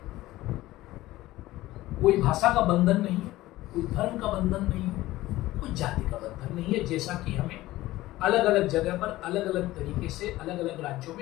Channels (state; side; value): quieter; right; 16.9 dB